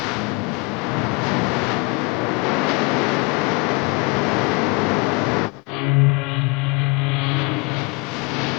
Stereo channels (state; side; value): quieter; right; 29.1 dB